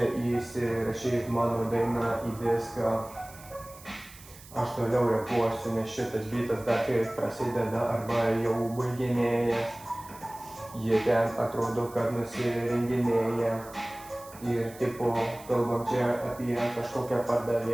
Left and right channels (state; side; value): noise; right; hiss, 20 dB below the sound